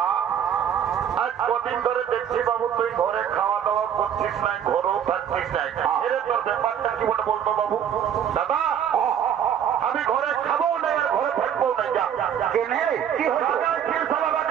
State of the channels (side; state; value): left; quieter; 8.9 dB